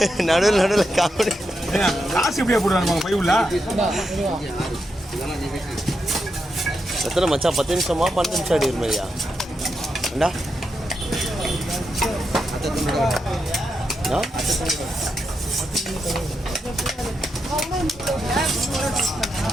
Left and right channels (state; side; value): normal; both; correlation 0.85